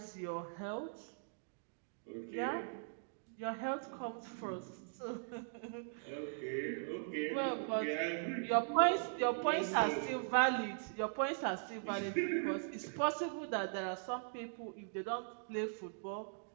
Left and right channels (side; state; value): left; silent; digital silence